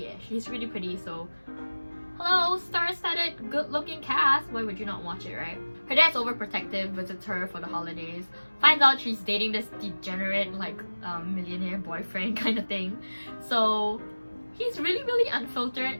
she's really pretty, so hello, star-studded, good-looking cast. Why would you not watch it, right? Her dad's overprotective, visits her for the holidays, finds out she's dating this degenerate, like, millionaire boyfriend kind of thing. So he's really, really unfiltered,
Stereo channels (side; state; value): both; inverted; correlation -1.00